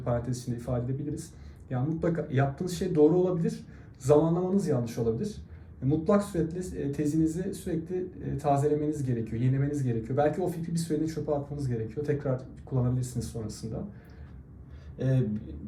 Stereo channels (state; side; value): identical; both; correlation 1.00